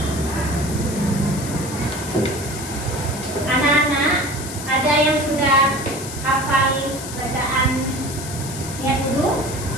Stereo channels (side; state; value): left; noise; hiss, 10 dB below the sound